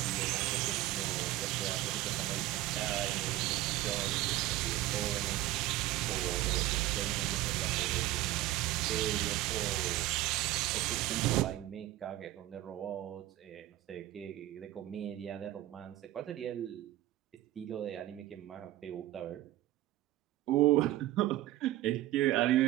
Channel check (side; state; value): left; quieter; 15.5 dB